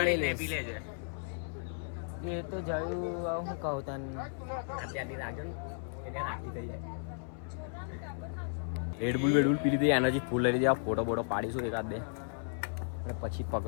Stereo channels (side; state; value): right; silent; 55 dB below the other